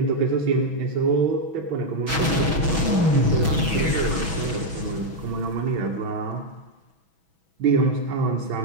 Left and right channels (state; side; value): late; left; 6.1 ms